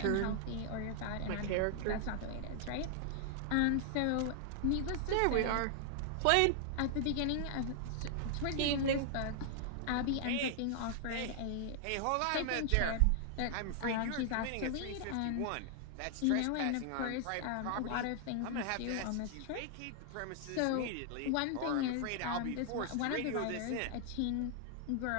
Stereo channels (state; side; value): different; both; correlation 0.00